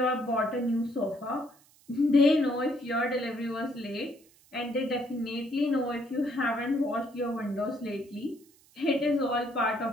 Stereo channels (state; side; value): noise; right; hiss, 29 dB below the sound